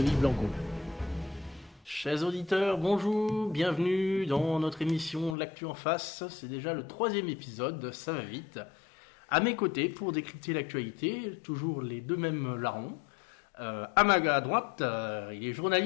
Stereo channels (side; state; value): right; drops out; at 5.4 s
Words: Blanco. Chers auditeurs, bonjour, bienvenue dans notre émission L'actu en face. C'est déjà le 3e épisode, ça va vite. À mes côtés, pour décrypter l'actualité, toujours les deux mêmes larrons. À droite, il est